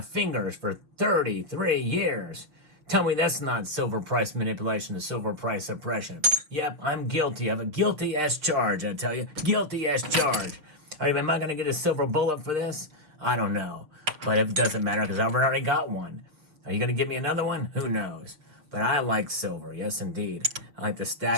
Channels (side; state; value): left; late; 6.3 ms